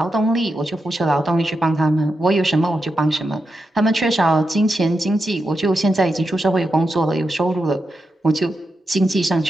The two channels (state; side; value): normal; both; correlation 0.87